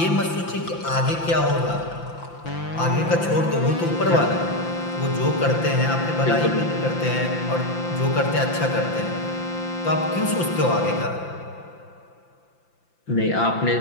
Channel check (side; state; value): right; late; 5.9 ms